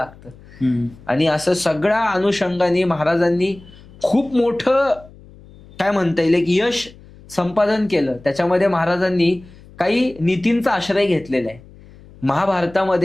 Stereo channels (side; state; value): left; noise; hum, 22 dB below the sound